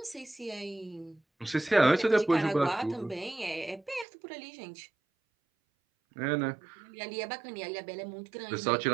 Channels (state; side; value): drops out; left; at 4.0 s